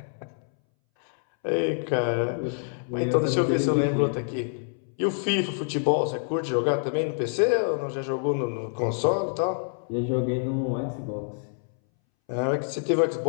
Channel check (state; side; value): silent; right; 60 dB below the other